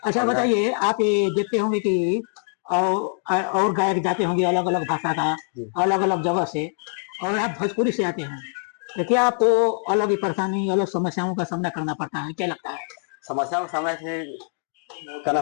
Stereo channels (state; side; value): silent; right; digital silence